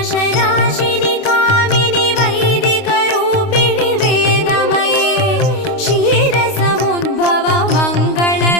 कामिनि वैदिकरूपिणि वेदमये क्षीरसमुद्भव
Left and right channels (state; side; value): late; right; 29 ms